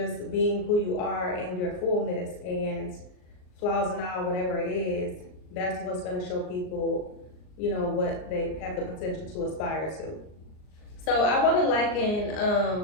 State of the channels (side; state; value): right; late; 39 ms